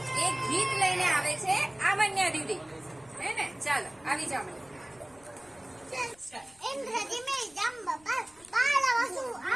એક ગીત લઈને આવે છે આમન્યા દીદી, હે ને? ચાલો આવી જાઓ. ઇન્દ્રજી મેં જંબ પર બાળવસુ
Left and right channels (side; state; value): left; noise; rumble, 29 dB below the sound